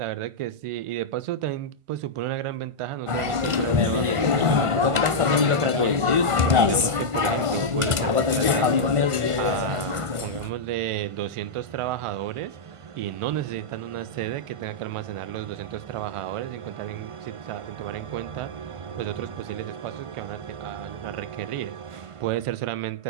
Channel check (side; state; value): left; late; 1.5 ms